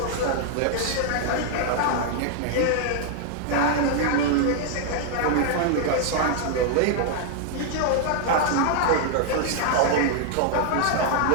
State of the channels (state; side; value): different; both; correlation 0.00